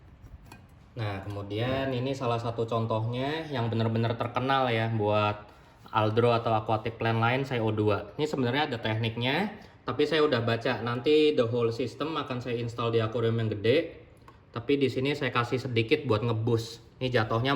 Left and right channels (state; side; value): identical; both; correlation 1.00